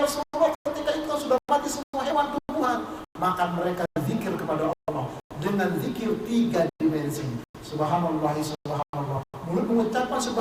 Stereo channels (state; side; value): identical; both; correlation 1.00